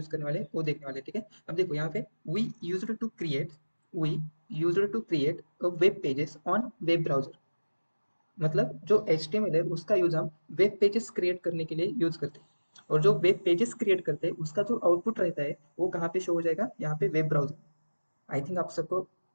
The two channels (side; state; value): both; inverted; correlation -1.00